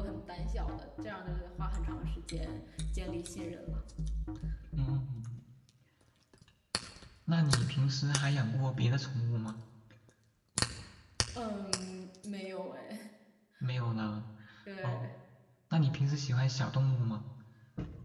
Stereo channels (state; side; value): identical; both; correlation 1.00